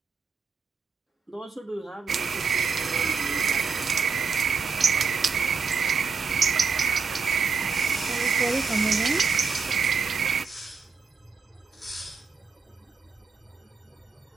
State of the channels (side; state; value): left; quieter; 5.4 dB